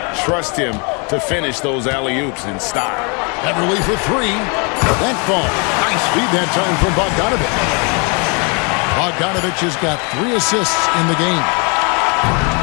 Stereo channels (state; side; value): quieter; right; 33.7 dB